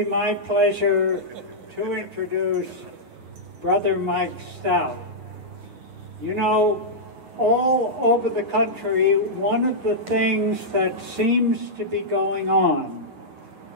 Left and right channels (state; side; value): late; left; 8.8 ms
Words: my pleasure to introduce Brother Mike Stout. You know, all over the country, one of the things that seems to be going on